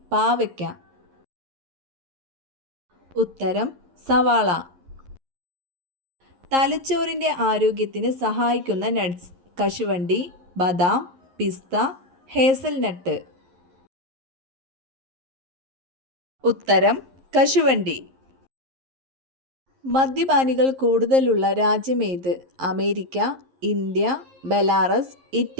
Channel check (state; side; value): late; left; 11 ms